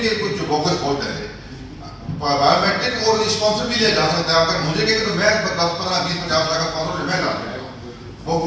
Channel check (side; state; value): both; identical; correlation 1.00